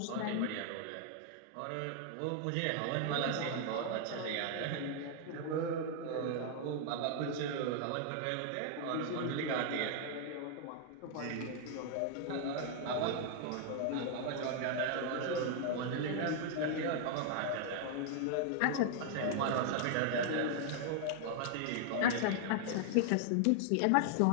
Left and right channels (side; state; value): both; different; correlation 0.00